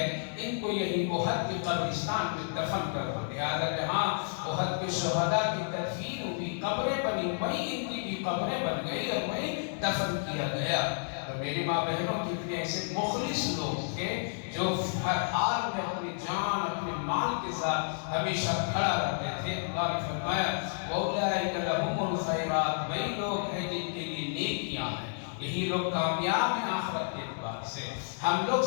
ان کو یہی احد کے قبرستان میں دفن کر دو۔ لہذا جہاں احد کے شہداء کی تدفین ہوئی، قبریں بنی، وہیں ان کی بھی قبریں بن گئی اور وہیں دفن کیا گیا۔ اور میری ماں بہنوں کتنے ایسے مخلص لوگ تھے جو ہر حال میں اپنی جان اپنے مال کے ساتھ ہمیشہ کھڑا رہتے تھے۔ اللہ نے فرمایا اولئک لہم الخیرات، وہی لوگ ہیں جن کے لیے نیکیاں ہیں، یہی لوگ کامیاب ہیں آخرت کے اعتبار سے۔ ہم لوگ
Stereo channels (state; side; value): silent; right; digital silence